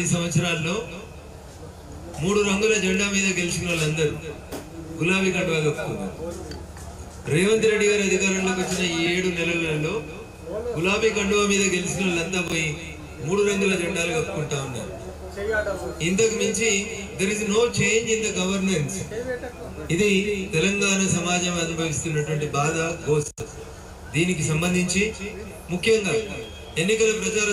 సంవత్సరాల్లో 3 రంగుల జెండా మీద గెలిచిన వాళ్ళందరూ గులాబీ కండువా కప్పుకున్నారు. రేవంత్ రెడ్డి గారి అధికారంలోకి వచ్చిన ఈ 7 నెలలలో గులాబీ కండువా మీద గెలిచిన వాళ్ళంతా పోయి 3 రంగుల జెండాలు కప్పుకుంటా ఉన్నారు. ఇంతకు మించి there is no change in the governance. ఇది తెలంగాణ సమాజం అనుభవిస్తున్నటువంటి బాధ, గోస. దీనికి సంబంధించి ముఖ్యంగా ఎన్నికల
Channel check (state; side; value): identical; both; correlation 1.00